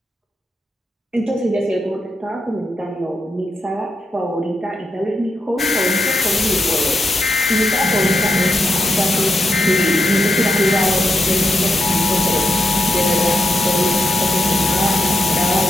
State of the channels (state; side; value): normal; both; correlation 0.83